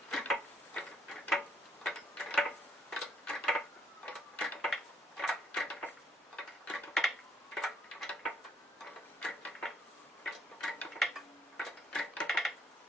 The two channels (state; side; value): normal; both; correlation 0.69